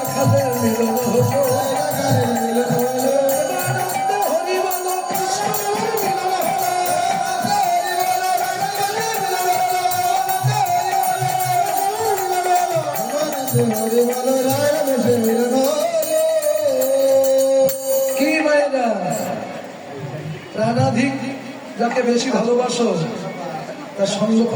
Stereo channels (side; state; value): both; identical; correlation 1.00